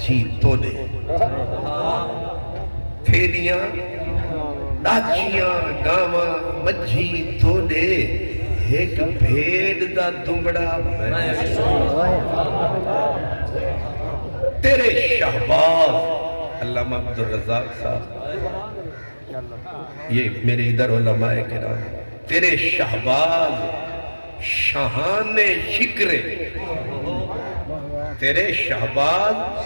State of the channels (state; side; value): inverted; both; correlation -1.00